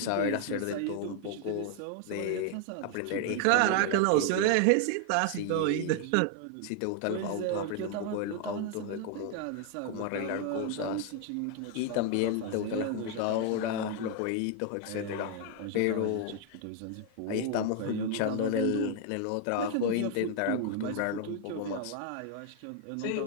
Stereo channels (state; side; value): different; both; correlation 0.00